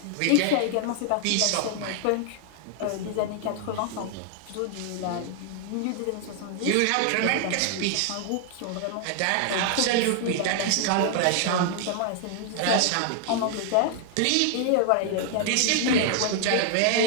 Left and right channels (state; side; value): different; both; correlation 0.00